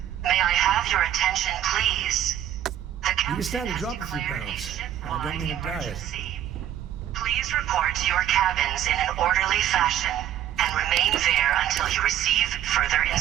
may I have your attention, please? You can stand to drop a few pounds. I don't mean a diet. Please report to your cabins in an orderly fashion and remain there until you receive further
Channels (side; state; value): left; quieter; 11.5 dB